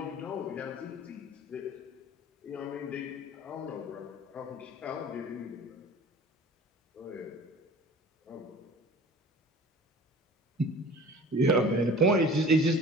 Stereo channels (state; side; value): normal; both; correlation 0.43